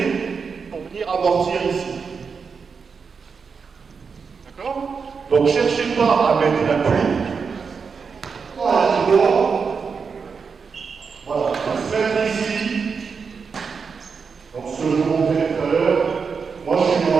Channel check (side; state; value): left; quieter; 5.5 dB